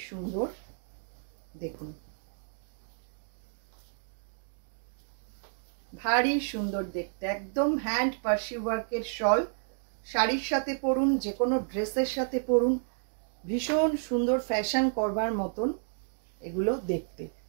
সুন্দর দেখুন, ভারী সুন্দর দেখতে, একদম হ্যান্ড পার্সি ওয়ার্কের শল। শাড়ির সাথে পরুন, যে কোনো ড্রেসের সাথে পরুন, ভীষণ সুন্দর ফ্যাশন করবার মতন এগুলো দেখতে।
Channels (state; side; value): silent; left; digital silence